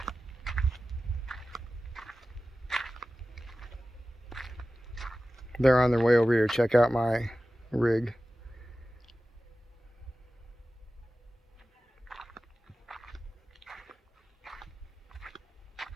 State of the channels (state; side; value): normal; both; correlation 0.95